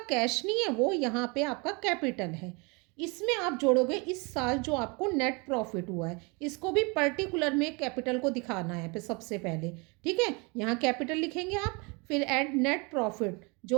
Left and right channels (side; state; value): left; quieter; 29.7 dB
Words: नहीं है, वो यहाँ पे आपका कैपिटल है। इसमें आप जोड़ोगे इस साल जो आपको नेट प्रॉफिट हुआ है, इसको भी पर्टिकुलर में कैपिटल को दिखाना है फिर सबसे पहले। ठीक है, यहाँ कैपिटल लिखेंगे आप, फिर ऐड नेट प्रॉफिट